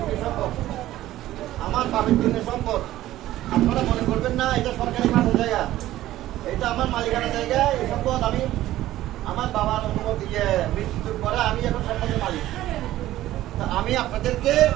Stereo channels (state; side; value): quieter; left; 14.7 dB